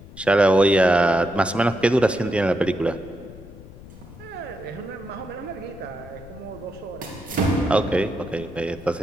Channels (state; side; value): noise; left; rumble, 18 dB below the sound